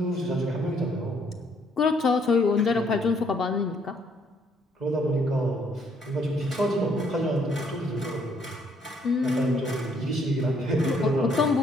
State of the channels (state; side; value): normal; both; correlation 0.67